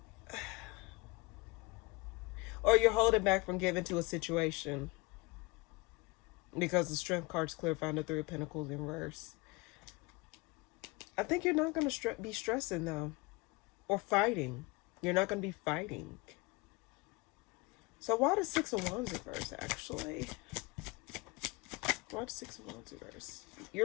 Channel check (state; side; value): quieter; right; 25.3 dB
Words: or you're holding back from giving to a situation, because the Strength card's clear, found the Three of Pentacles in reverse. I think you're not going to be stressing, though, or fighting. You're not going to be fighting. So why the Six of Wands reverse, actually? Why the Six of Wands reverse?